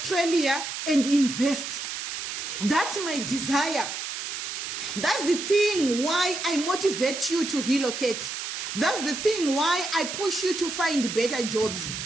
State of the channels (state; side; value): noise; right; hiss, 5 dB below the sound